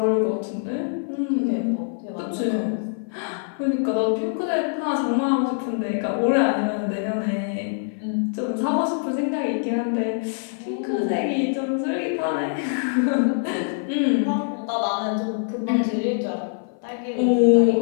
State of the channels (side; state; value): right; silent; 55 dB below the other